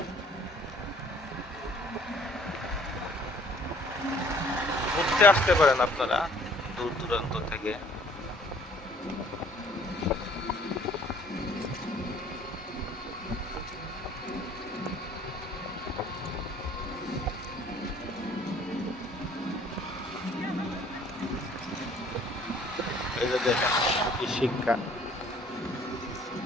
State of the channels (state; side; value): normal; both; correlation 0.57